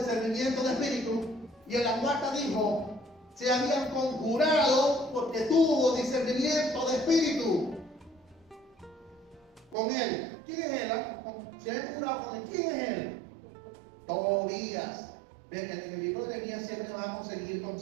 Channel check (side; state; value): left; drops out; at 9.8 s